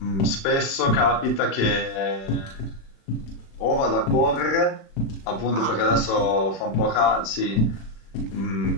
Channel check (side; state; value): right; late; 36 ms